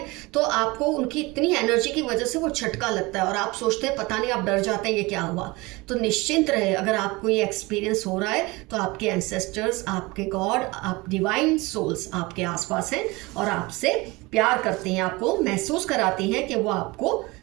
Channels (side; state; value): left; quieter; 23.3 dB